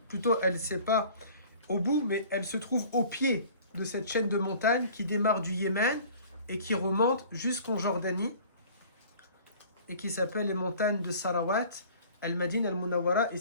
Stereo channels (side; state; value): both; inverted; correlation -0.48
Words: Plutôt, elle ne sait pas au bout, mais elle se trouve au pied de cette chaîne de montagnes qui démarre du Yémen et qui remonte jusqu'en Jordanie et qui s'appelle les montagnes de Sarawat. Al-Madina al-Munawwara est